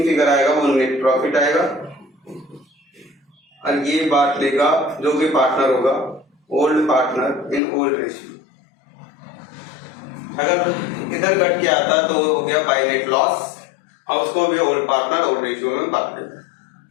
फिगर आएगा वो नेट प्रॉफिट आएगा। और ये बात लेगा जो भी पार्टनर होगा, old partner in old ratio. अगर इधर घट के आता तो हो गया बाय नेट लॉस, और उसको भी ओल्ड पार्टनर ओल्ड रेशियो में बांट देगा।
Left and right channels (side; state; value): right; drops out; at 7.6 s